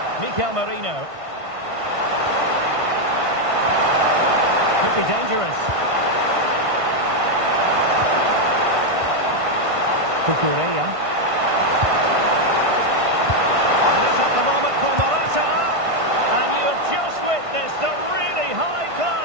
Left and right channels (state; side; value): late; left; 1.5 ms